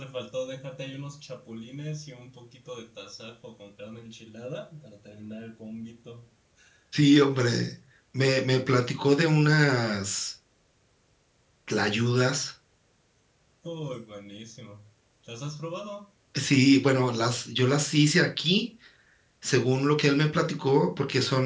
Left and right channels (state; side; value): identical; both; correlation 1.00